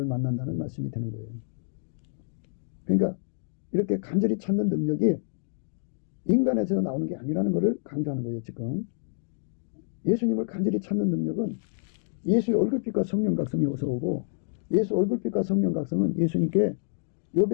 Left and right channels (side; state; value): right; silent; digital silence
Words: 만난다는 말씀이 되는 거예요. 그러니까 이렇게 간절히 찾는 능력이 인간에서 나오는 게 아니라는 것을 강조하는 거예요. 지금 예수님을 간절히 찾는 능력은 예수의 얼굴빛과 성령 각성이 어서 오고, 예수 얼굴빛과 성령 각성은 예수님께